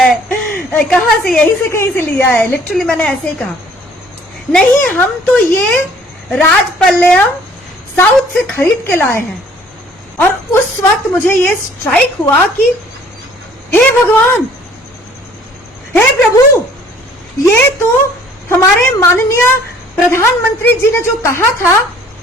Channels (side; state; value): both; normal; correlation 0.56